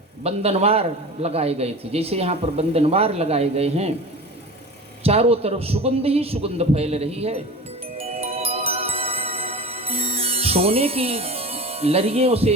बंधनवार लगाए गए थे, जैसे यहाँ पर बंधनवार लगाए गए हैं, चारों तरफ सुगंध ही सुगंध फैल रही है। सोने की लड़ियों से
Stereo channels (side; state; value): both; normal; correlation 0.34